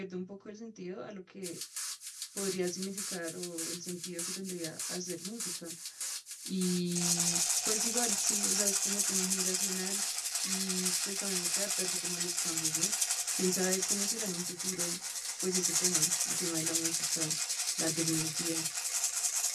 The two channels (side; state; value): both; identical; correlation 1.00